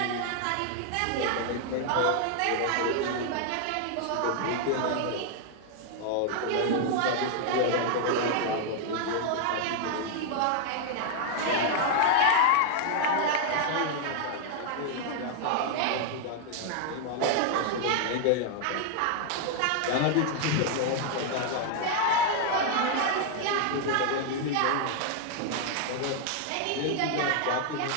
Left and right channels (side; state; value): both; different; correlation 0.00